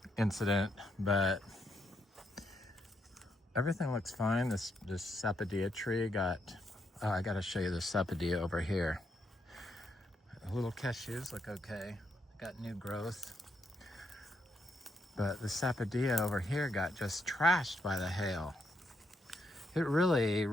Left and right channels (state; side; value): normal; both; correlation 0.78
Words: incident, but everything looks fine. This sapodilla tree got, oh, I gotta show you the sapodilla over here. The little cashews look okay. Got new growth. But the sapodilla over here got just trashed by the hail. It really